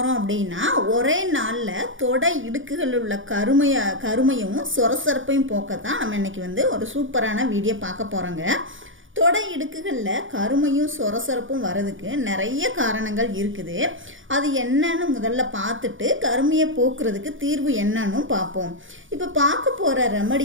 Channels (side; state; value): left; late; 0.57 ms